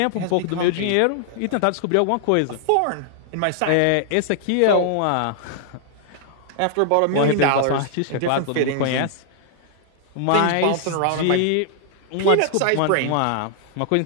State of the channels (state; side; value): different; both; correlation -0.01